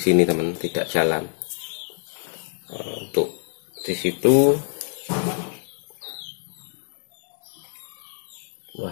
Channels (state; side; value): silent; right; 62 dB below the other